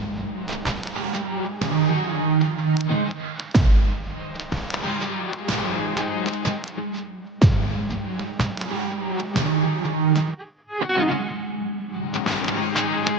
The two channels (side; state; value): both; normal; correlation 0.51